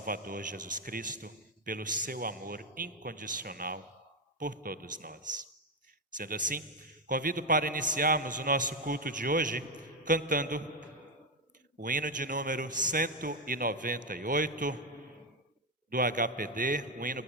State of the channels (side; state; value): both; normal; correlation 0.08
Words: Jesus Cristo pelo seu amor incondicional por todos nós. Sendo assim, convido para iniciarmos o nosso culto de hoje cantando o hino de número 198 do HPD, um hino